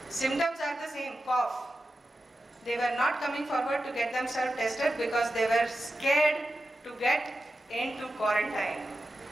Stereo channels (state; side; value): normal; both; correlation 0.91